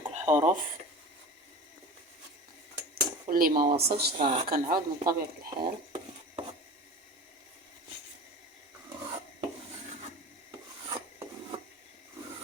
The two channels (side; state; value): both; normal; correlation 0.34